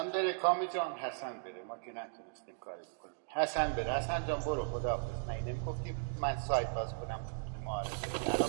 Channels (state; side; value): silent; left; digital silence